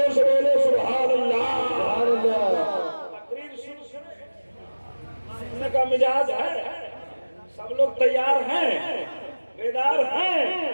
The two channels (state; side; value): inverted; both; correlation -1.00